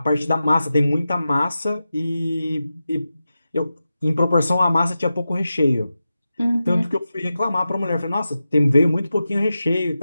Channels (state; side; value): inverted; both; correlation -0.92